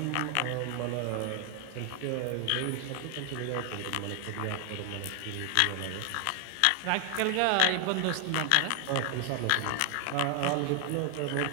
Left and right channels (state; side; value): different; both; correlation 0.00